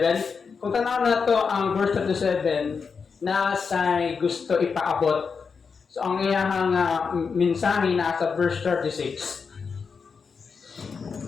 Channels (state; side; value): quieter; right; 5.5 dB